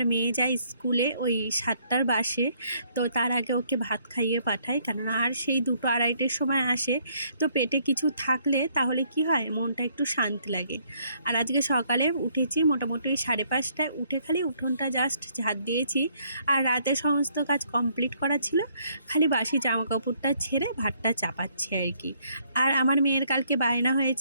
মেয়ে যায় স্কুলে ওই 7টার বাসে, তো তার আগে ওকে ভাত খাইয়ে পাঠাই, কেননা আর সেই 2-2:30টার সময় আসে। তো পেটে কিছু থাকলে তাহলে কি হয়, মনটা একটু শান্তি লাগে। আর আজকে সকালে উঠেছি মোটামুটি 5:30টায়, উঠে খালি উঠোনটা জাস্ট ঝাড় দিয়েছি। আর রাতে সমস্ত কাজ কমপ্লিট করা ছিল, খালি বাসি জামা কাপড়টা ছেড়ে ভাতটা চাপাচ্ছি আর কি। আর আমার মেয়ের কালকে বায়না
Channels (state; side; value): inverted; both; correlation -0.67